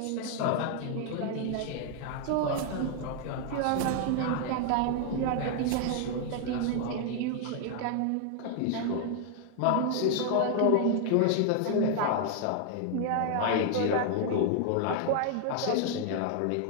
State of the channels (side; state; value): both; different; correlation 0.00